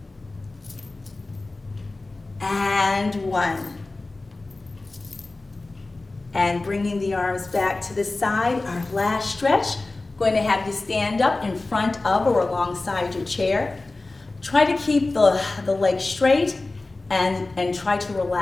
and 1. And bringing the arms back to the side, our last stretch. Going to have you stand up in front of or alongside your chair. Try to keep the legs straight. And try to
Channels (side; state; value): right; quieter; 3.2 dB